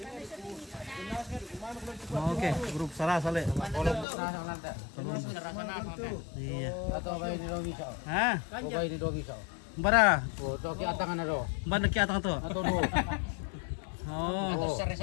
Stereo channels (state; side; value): drops out; right; at 4.0 s